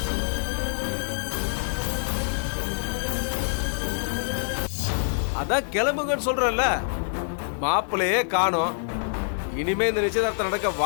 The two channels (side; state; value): right; silent; digital silence